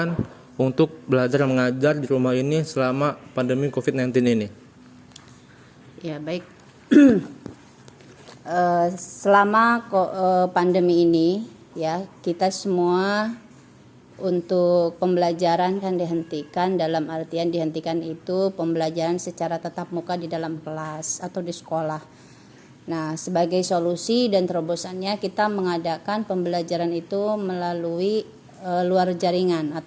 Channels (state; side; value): identical; both; correlation 1.00